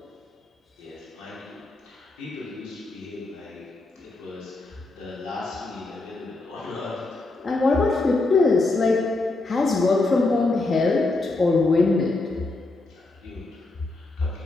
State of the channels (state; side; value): quieter; right; 3.1 dB